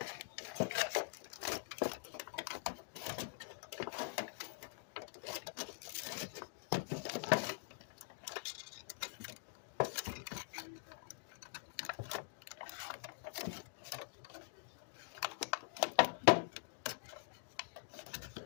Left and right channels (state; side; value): silent; right; digital silence